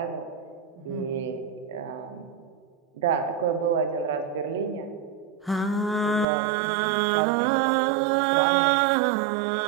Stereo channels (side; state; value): left; drops out; at 6.2 s